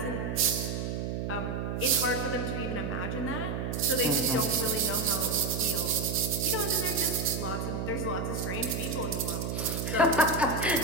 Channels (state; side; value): noise; right; hum, 2 dB below the sound